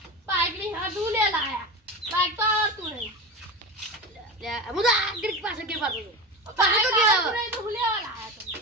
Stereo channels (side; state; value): both; normal; correlation 0.25